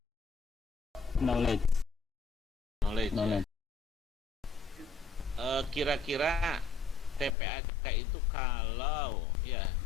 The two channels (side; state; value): right; drops out; at 7.4 s